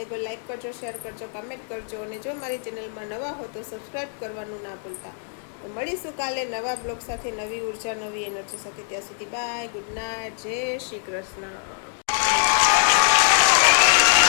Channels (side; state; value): right; silent; 62 dB below the other